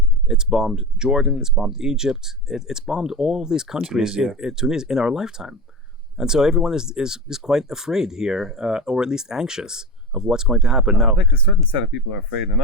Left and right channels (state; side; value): normal; both; correlation 0.22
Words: it's bombed Jordan, it's bombed Egypt, it's bombed all these countries Tunisia in our lifetime. And so everyone is quite afraid here, or at least anxious of what's going to happen. Now, I think a certain set of people are afraid,